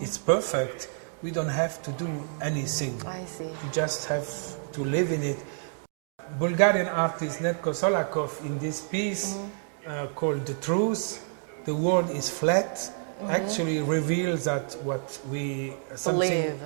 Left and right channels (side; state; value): left; silent; digital silence